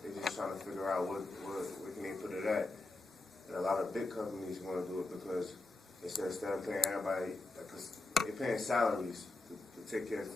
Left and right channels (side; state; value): right; quieter; 3.1 dB